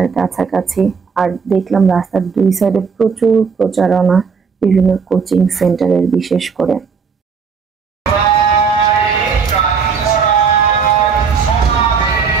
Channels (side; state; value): left; quieter; 5.8 dB